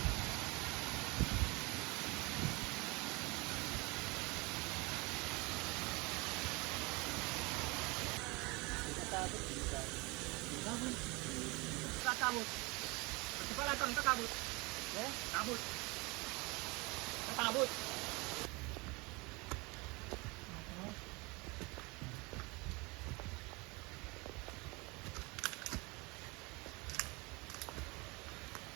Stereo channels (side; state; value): left; quieter; 26.4 dB